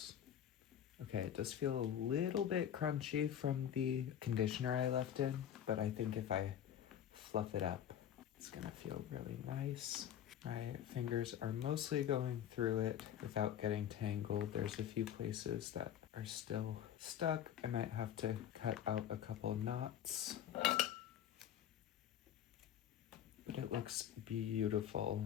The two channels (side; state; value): right; quieter; 10.0 dB